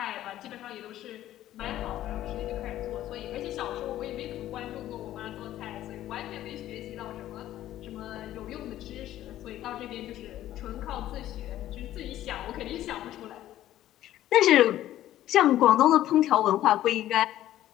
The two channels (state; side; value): quieter; right; 13.3 dB